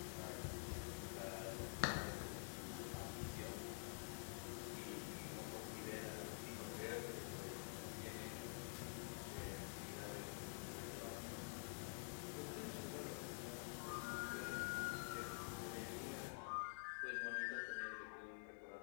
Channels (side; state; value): right; silent; digital silence